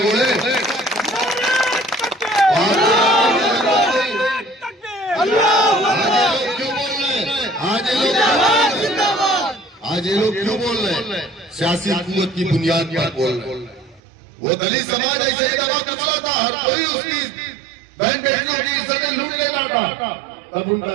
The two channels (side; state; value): left; drops out; at 14.0 s